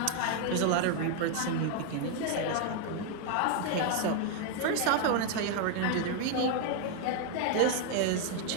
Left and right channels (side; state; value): both; different; correlation 0.00